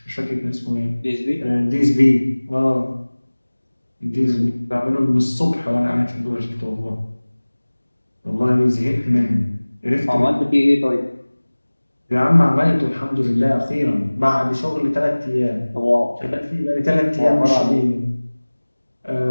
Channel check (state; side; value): inverted; both; correlation -1.00